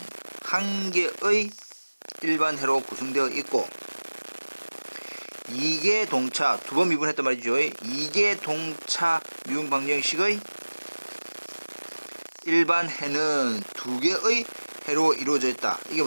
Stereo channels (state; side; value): inverted; both; correlation -1.00